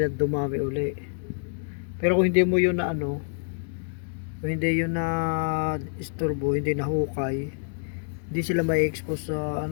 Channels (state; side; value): silent; right; digital silence